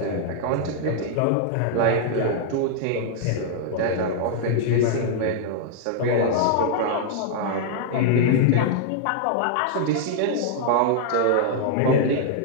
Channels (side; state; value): both; different; correlation -0.01